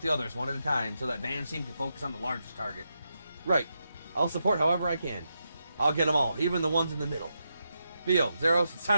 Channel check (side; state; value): both; inverted; correlation -0.85